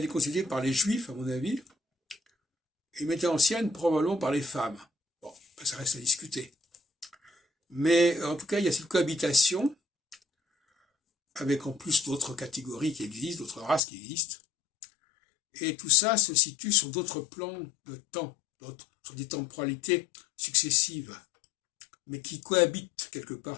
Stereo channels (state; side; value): drops out; right; at 13.8 s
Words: est constituée par les juifs, à mon avis, et l'humanité ancienne, probablement par les femmes. Bon, ça reste à discuter. Mais en tout cas, il y a cette cohabitation, avec en plus d'autres catégories qui existent, d'autres races qui existent. Et tout ça se situe sur d'autres plans de temps, sur des temporalités successives, mais qui cohabitent quelque part